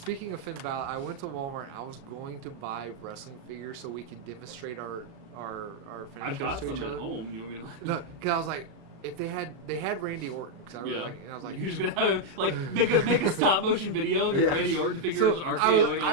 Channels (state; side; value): late; left; 36 ms